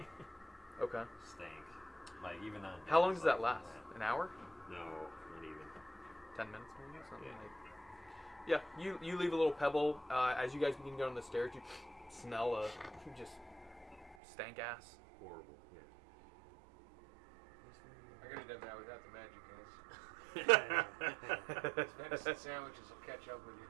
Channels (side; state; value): left; drops out; at 14.2 s